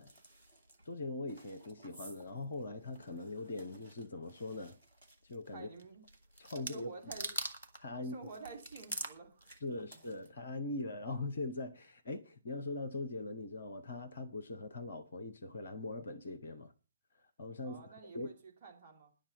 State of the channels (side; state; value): both; inverted; correlation -0.60